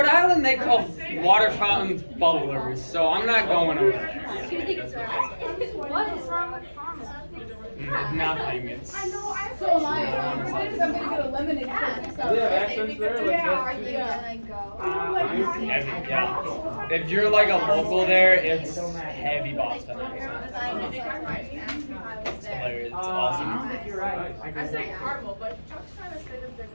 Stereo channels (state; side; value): inverted; both; correlation -1.00